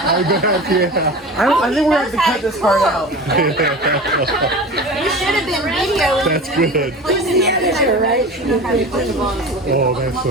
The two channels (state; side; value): normal; both; correlation 0.33